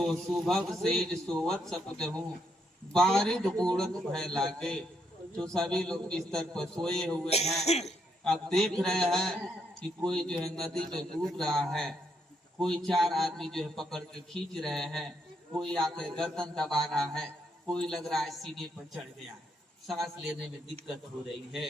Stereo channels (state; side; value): normal; both; correlation 0.76